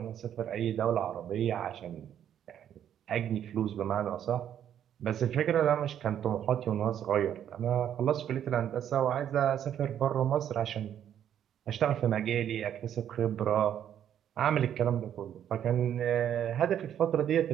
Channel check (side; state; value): left; quieter; 9.9 dB